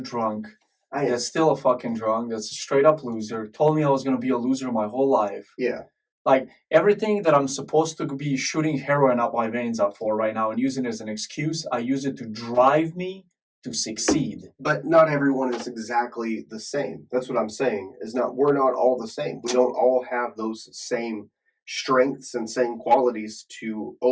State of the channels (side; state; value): both; identical; correlation 1.00